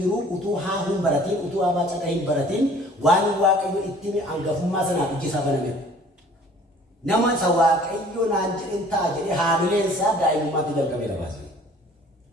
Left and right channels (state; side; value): normal; both; correlation 0.52